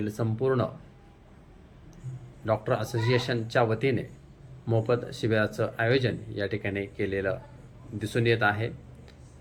संपूर्ण डॉक्टर असोसिएशनच्या वतीने मोफत शिबिराचं आयोजन या ठिकाणी केलेलं दिसून येत आहे।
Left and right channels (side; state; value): both; identical; correlation 1.00